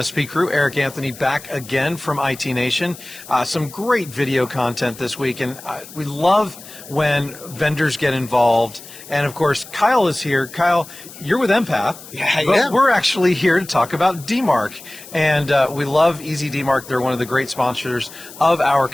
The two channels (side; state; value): left; noise; hiss, 17 dB below the sound